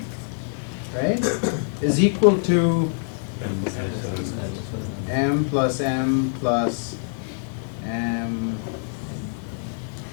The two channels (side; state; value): right; silent; digital silence